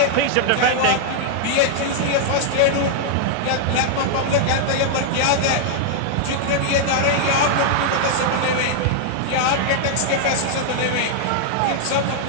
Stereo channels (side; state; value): both; different; correlation -0.01